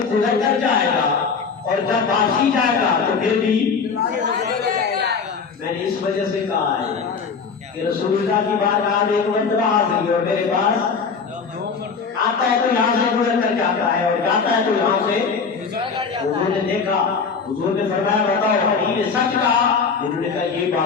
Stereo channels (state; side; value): quieter; right; 5.4 dB